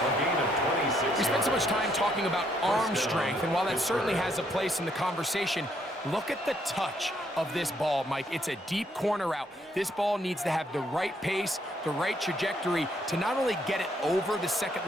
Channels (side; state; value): both; normal; correlation 0.71